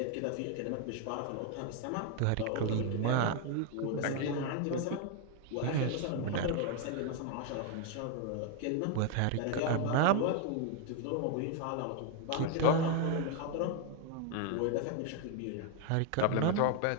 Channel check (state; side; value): different; both; correlation 0.01